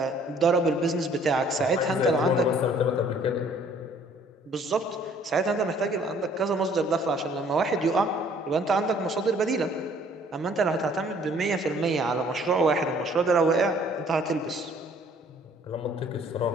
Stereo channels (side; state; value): both; normal; correlation 0.58